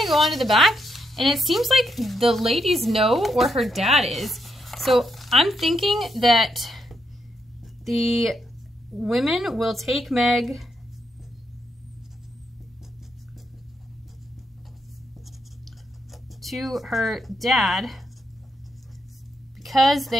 to go on to the back, and it seems like the ladies know where her dad is. So I'm thinking that the women will take Meg to her dad because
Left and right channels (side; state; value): both; normal; correlation 0.80